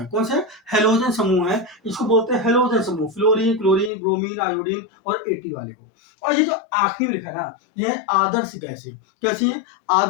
कौन से, हेलोजन समूह है, इसको बोलते हैं हेलोजन समूह। फ्लोरीन, क्लोरीन, ब्रोमीन, आयोडीन और एटी वाले को। और ये जो आखिरी में लिखा है ना, ये है आदर्श गैसें। कैसी है,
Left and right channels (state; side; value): drops out; right; at 3.9 s